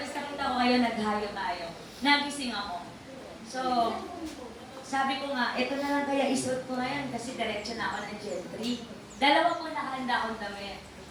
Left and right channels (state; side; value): identical; both; correlation 1.00